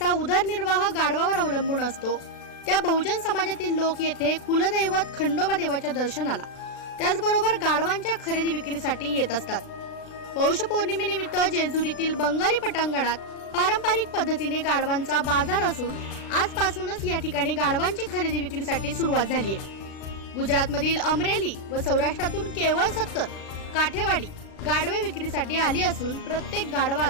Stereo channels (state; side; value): late; right; 36 ms